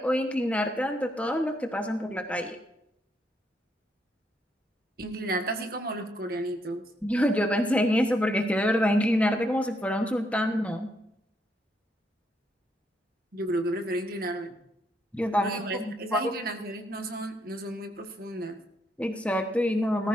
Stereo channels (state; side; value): normal; both; correlation 0.75